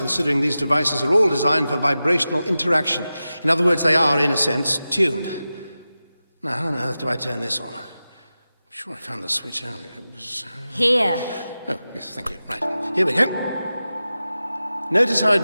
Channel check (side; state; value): both; inverted; correlation -0.94